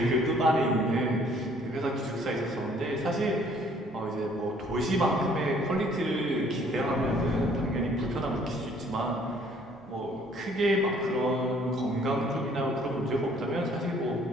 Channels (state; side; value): normal; both; correlation 0.60